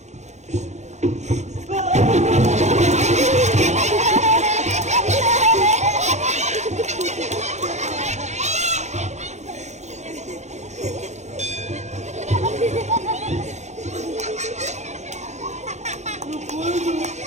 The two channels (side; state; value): left; late; 0.33 ms